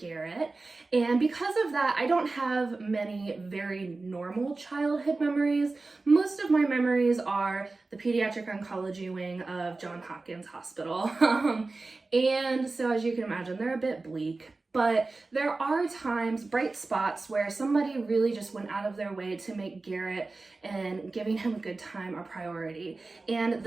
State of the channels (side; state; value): left; quieter; 3.5 dB